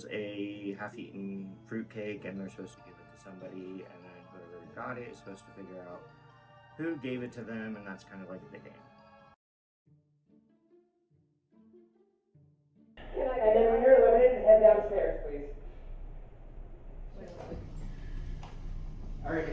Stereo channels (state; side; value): identical; both; correlation 1.00